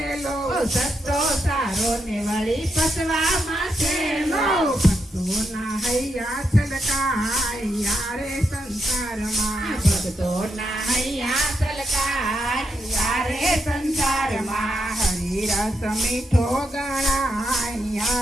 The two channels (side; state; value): both; normal; correlation 0.82